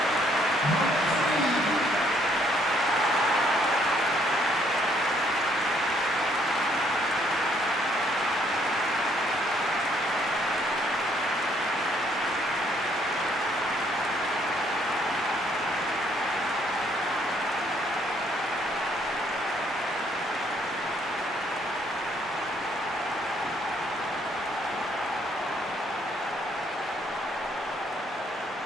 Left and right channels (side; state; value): both; normal; correlation 0.67